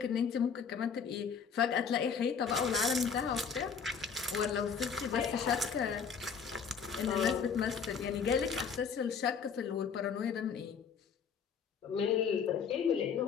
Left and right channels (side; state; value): right; quieter; 6.4 dB